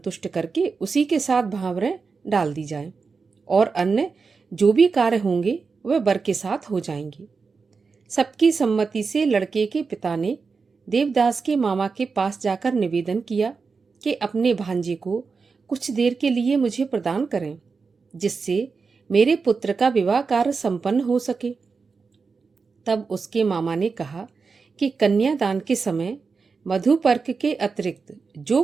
करके उसी के साथ भांवरें डाल दी जाएं और अन्य जो भी कार्य होंगे वह वर के साथ हो जाएंगे। सबकी सम्मति से लड़के के पिता ने देवदास के मामा के पास जाकर निवेदन किया कि अपने भांजे को कुछ देर के लिए मुझे प्रदान करें, जिससे मेरे पुत्र का विवाह कार्य संपन्न हो सके। तब उसके मामा ने कहा कि कन्यादान के समय मधुपर्क के अतिरिक्त जो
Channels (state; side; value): quieter; left; 4.8 dB